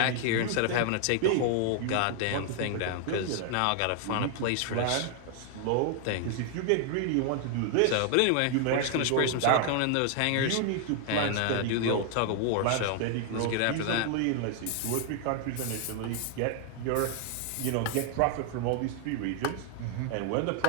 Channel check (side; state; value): both; different; correlation 0.00